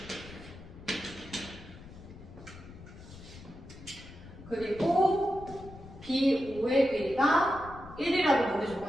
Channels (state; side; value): noise; left; rumble, 16 dB below the sound